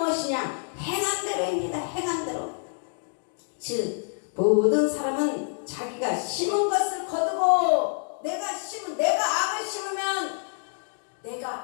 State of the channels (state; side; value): silent; right; 56 dB below the other